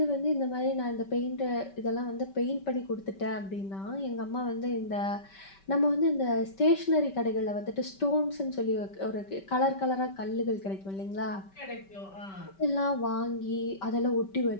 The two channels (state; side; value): late; right; 5.2 ms